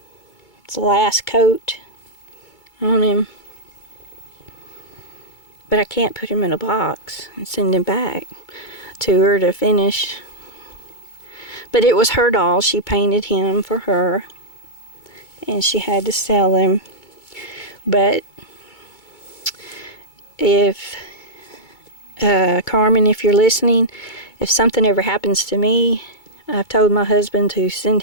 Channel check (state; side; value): late; right; 2.2 ms